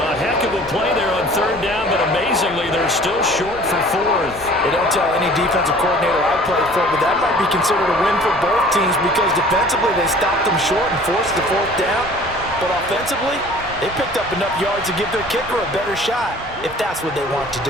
heck of a play there on 3rd down, but amazingly, they're still short for 4th. They don't tell any defensive coordinator I played for, but that might be considered a win for both teams because defensively they stopped them short and forced the 4th down. But offensively, they picked up enough yards to give their kicker a better shot if that's what they want to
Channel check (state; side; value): normal; both; correlation 0.48